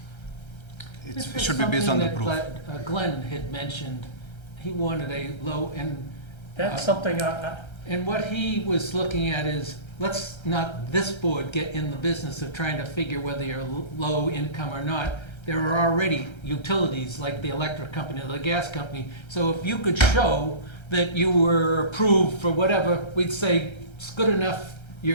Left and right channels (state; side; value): late; right; 1.3 ms